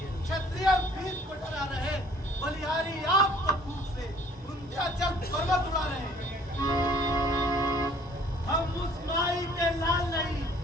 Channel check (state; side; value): normal; both; correlation 0.56